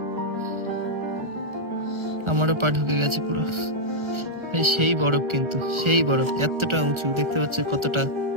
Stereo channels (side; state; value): left; late; 1.4 ms